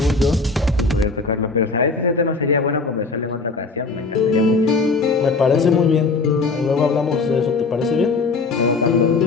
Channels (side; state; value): right; quieter; 4.0 dB